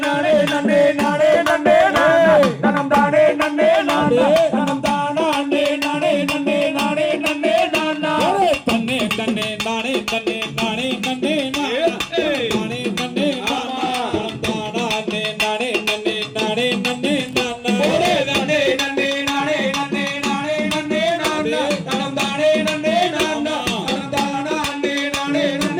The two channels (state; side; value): identical; both; correlation 1.00